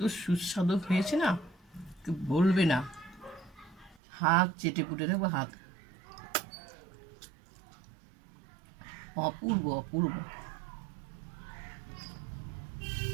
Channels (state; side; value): drops out; left; at 4.0 s